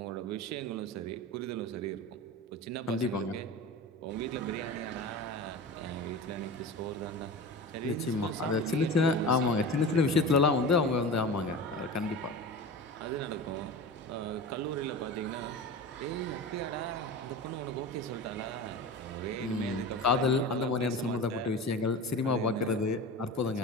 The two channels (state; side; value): normal; both; correlation 0.31